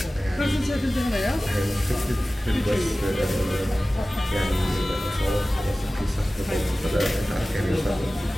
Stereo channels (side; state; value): both; normal; correlation 0.97